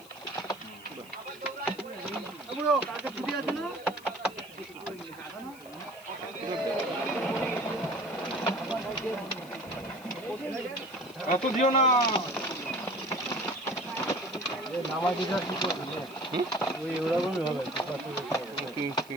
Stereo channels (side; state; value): left; noise; hiss, 21 dB below the sound